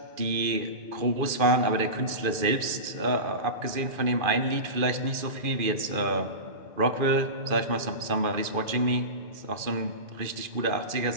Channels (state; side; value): late; left; 2.4 ms